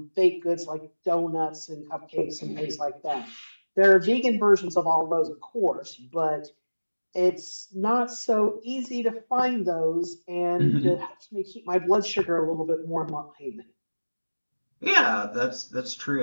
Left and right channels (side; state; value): both; inverted; correlation -1.00